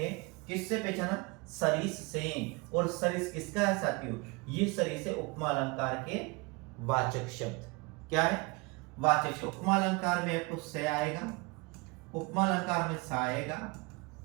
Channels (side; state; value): left; quieter; 26.7 dB